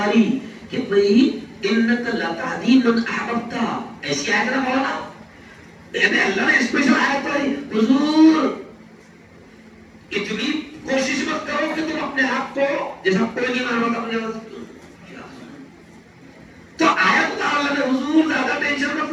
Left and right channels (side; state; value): both; identical; correlation 1.00